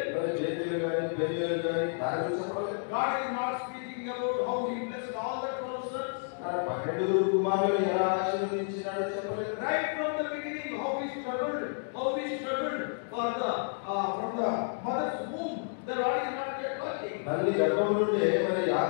మరి బేతేలు గాని బెరియలు గాని దాని గురించి చెప్పలేదు. God is not speaking about how he blessed all the 12 sons. తన 12 కుమారులను ఎలా ఆశీర్వదించినాడో చెప్పలేదు. Right from the beginning, how he struggled for the from the mother's womb. The Lord is not yet working. తల్లి గర్భం నుండి మరి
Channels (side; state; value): right; silent; digital silence